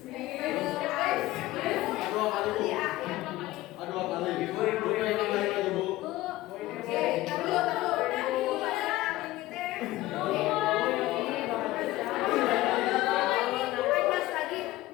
Aduh apa lagi? Bu yang kembali lagi Bu. Oke, taruh.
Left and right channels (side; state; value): right; quieter; 17.2 dB